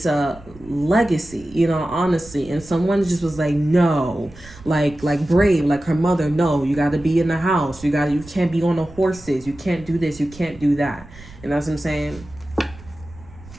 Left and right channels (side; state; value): right; noise; rumble, 20 dB below the sound